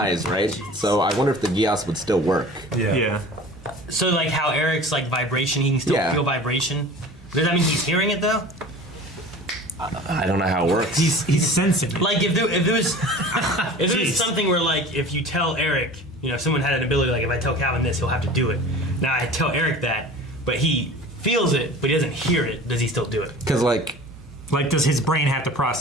right? So I wonder if the Geass would still work. Yeah. So like how Eric's like vibration, he can still Yeah. feel vibration. Does that mean he's hearing it though? I don't know how it works. He's sensing it. Like if there was if there Jeez. was something where like if you tell Eric, you know, someone had an ability like if I tell Calvin this, he'll have to do it. Now I tell Eric that, but he feels it, but he doesn't hear it. Does he still do it? Because, like, Like, does his brain have to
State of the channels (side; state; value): both; normal; correlation 0.40